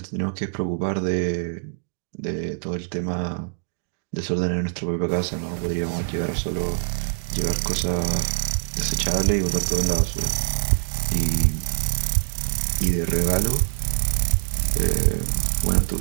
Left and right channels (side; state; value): left; silent; digital silence